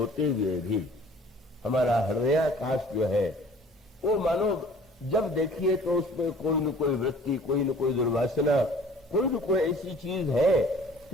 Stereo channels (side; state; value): both; normal; correlation 0.50